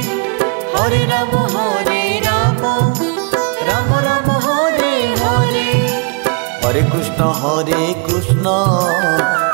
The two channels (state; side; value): quieter; left; 32.8 dB